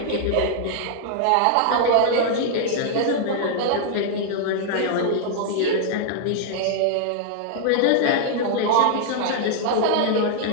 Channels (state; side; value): different; both; correlation 0.00